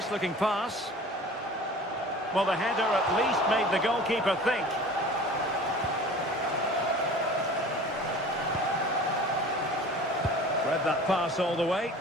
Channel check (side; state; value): both; normal; correlation 0.42